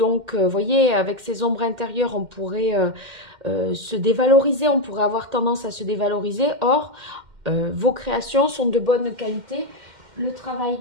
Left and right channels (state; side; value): late; left; 2.1 ms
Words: vous voyez, avec ces ombres intérieures, on pourrait se dévaloriser, on pourrait avoir tendance à se dévaloriser. Or, vos créations sont de bonne qualité. Le travail